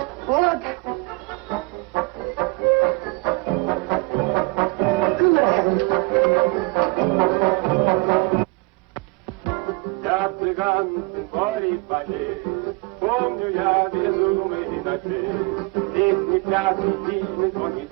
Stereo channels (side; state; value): left; quieter; 26.7 dB